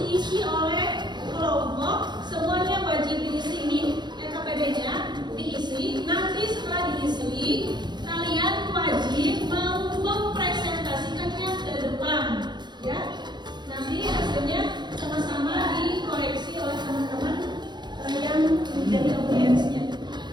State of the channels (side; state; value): left; late; 0.21 ms